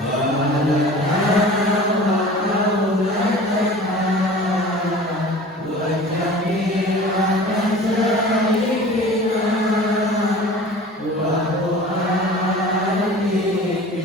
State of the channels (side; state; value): both; normal; correlation 0.41